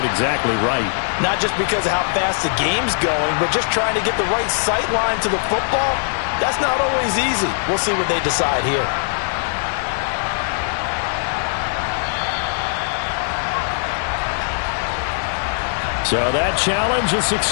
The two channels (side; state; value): right; silent; digital silence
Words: exactly right. Not just because of how fast the game's going, but just trying to get the right sight line to the football. That's not always easy. We'll see what they decide here. So that challenge, a